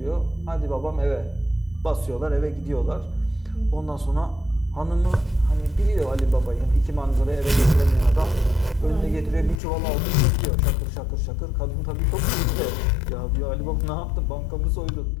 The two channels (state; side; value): drops out; right; at 9.6 s